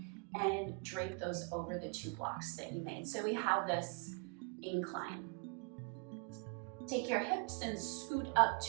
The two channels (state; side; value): quieter; left; 35.2 dB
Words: and drape those over the two blocks that you made. So we have this incline. Take your hips and scoot up